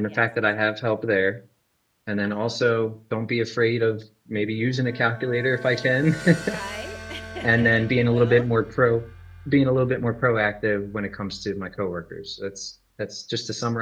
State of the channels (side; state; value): both; identical; correlation 1.00